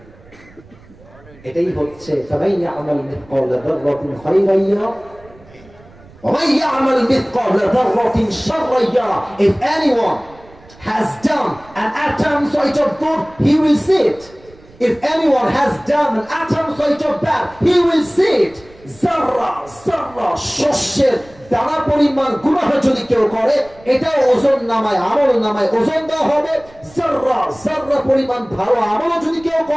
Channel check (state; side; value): noise; right; rumble, 25 dB below the sound